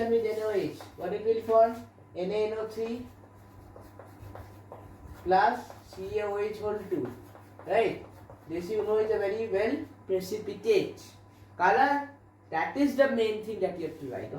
with NaOH. What it will form? NaNO3 plus CaOH whole 2. Right? This you know is a very well precipitate. Color, that is the main thing that you have to write.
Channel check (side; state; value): both; identical; correlation 1.00